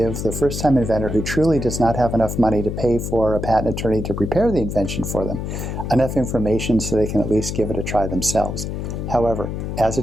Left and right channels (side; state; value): left; noise; hum, 4 dB below the sound